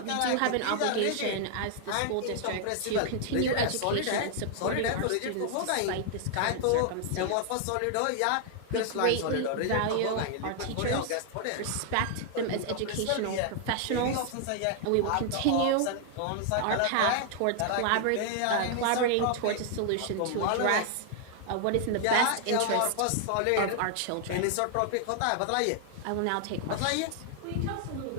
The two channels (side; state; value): both; different; correlation 0.00